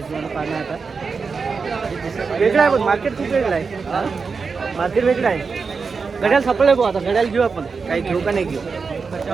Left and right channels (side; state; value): left; quieter; 5.0 dB